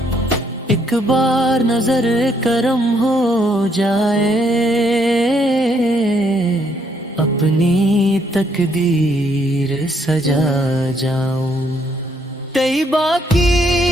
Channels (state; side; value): normal; both; correlation 0.70